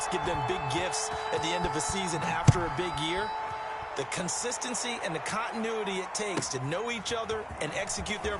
give them big gifts at the end of a season after a big year. The consistency and the continuity it takes to know each other and execute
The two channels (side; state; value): both; identical; correlation 1.00